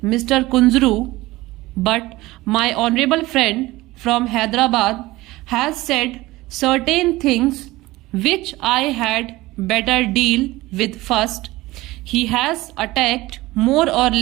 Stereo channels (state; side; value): quieter; left; 19.0 dB